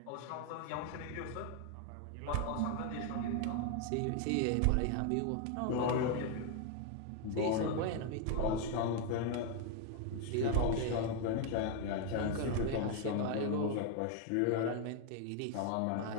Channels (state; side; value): different; both; correlation 0.01